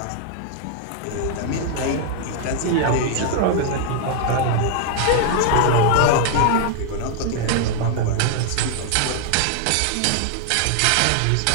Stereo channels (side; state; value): both; different; correlation 0.00